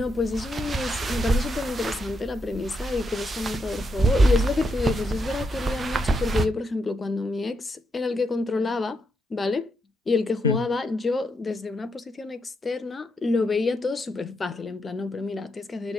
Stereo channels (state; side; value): normal; both; correlation 0.81